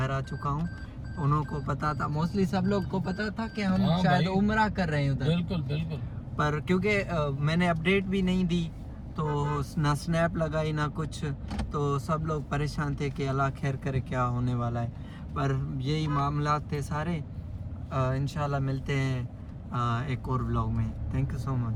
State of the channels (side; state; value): both; identical; correlation 1.00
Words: आ चुका हूँ। उनको पता था, मोस्टली सब लोग को पता था कि हम हाँ शायद भाई। उम्रा कर रहे हैं उधर, बिल्कुल बिल्कुल। पर क्योंकि मैंने अपडेट भी नहीं दी तो ना स्नैप लगाई ना कुछ, तो सब लोग परेशान थे कि अल्लाह खैर करे क्या होने वाला है। पर यही मामला थे सारे। इंशाल्लाह मिलते हैं एक और व्लॉग में। Thank you so